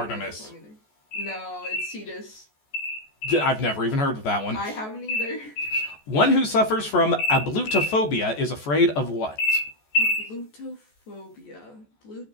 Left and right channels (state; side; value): late; right; 14 ms